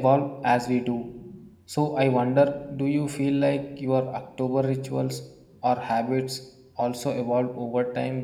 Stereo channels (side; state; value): both; identical; correlation 1.00